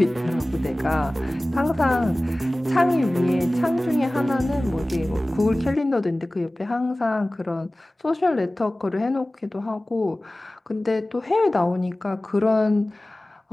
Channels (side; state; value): both; normal; correlation 0.98